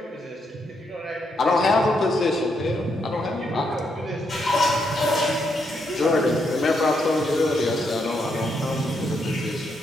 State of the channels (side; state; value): both; normal; correlation 0.78